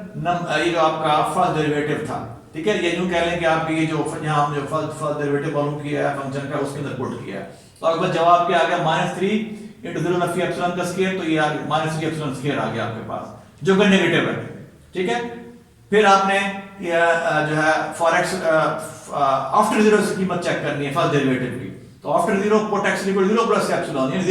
ये जो आपका फर्स्ट डेरिवेटिव था। ठीक है। ये यूं कह लें कि आप ये जो यहाँ हम जो फर्स्ट डेरिवेटिव मालूम किया है फंक्शन का उसके अंदर पुट किया है। तो अगर जवाब क्या आ गया, -3 × 0 नफी एप्सिलॉन का स्क्वायर, तो ये आ गया -3 एप्सिलॉन स्क्वायर आ गया आपके पास जो कि नेगेटिव है। ठीक है। फिर आपने जो है फॉर x आफ्टर 0 की कीमत चेक करनी है फर्स्ट डेरिवेटिव की। तो after 0 put x equal to 0 plus epsilon, यानी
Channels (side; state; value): both; identical; correlation 1.00